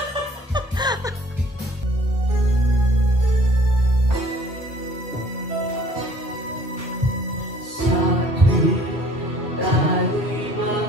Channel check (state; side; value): normal; both; correlation 0.54